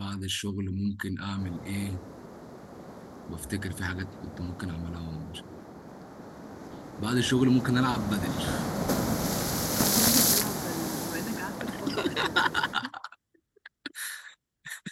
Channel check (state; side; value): identical; both; correlation 1.00